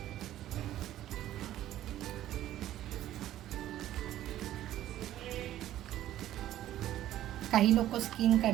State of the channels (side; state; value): left; quieter; 13.1 dB